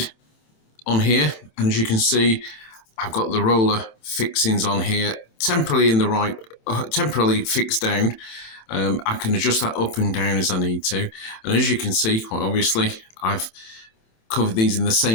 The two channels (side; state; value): right; late; 27 ms